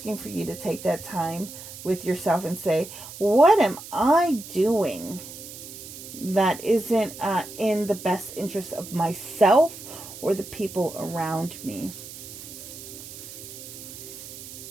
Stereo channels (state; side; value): noise; right; hiss, 13 dB below the sound